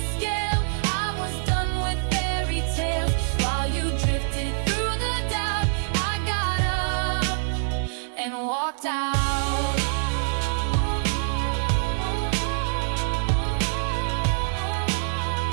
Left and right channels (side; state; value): left; silent; digital silence